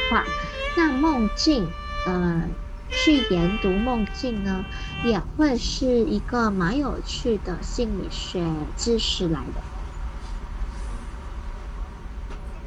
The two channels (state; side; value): identical; both; correlation 1.00